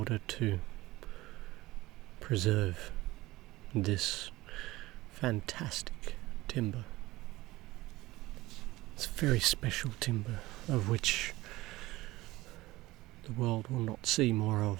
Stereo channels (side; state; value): left; quieter; 18.6 dB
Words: to preserve this fantastic timber. It's very special timber of which the world will not see more